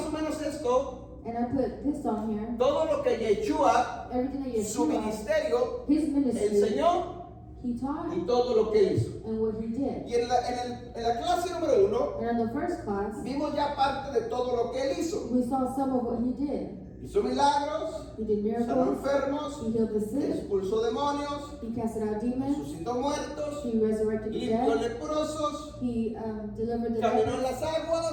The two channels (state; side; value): identical; both; correlation 1.00